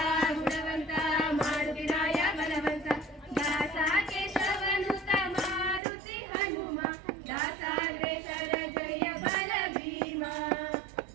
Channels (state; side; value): drops out; left; at 5.8 s